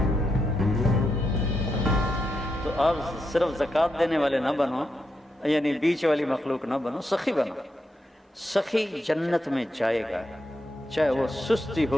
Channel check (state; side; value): normal; both; correlation 0.84